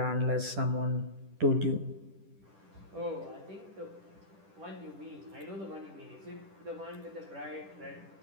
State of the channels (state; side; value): late; left; 10 ms